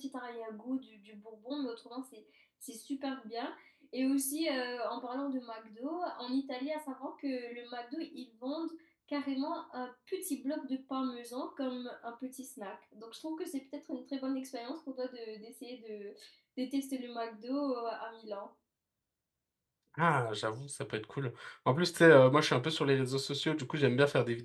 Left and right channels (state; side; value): identical; both; correlation 1.00